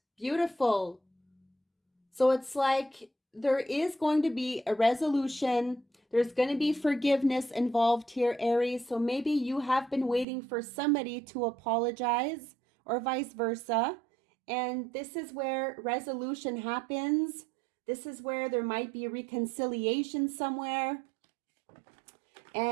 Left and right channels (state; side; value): drops out; left; at 10.2 s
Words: Beautiful. So it's like there is going to be a resolution. There's going to be forgiveness involved here, Aries. So maybe you have been waiting for somebody to apologize or vice versa. And this is where resolution happens. This is where there might be reconciliation somewhere.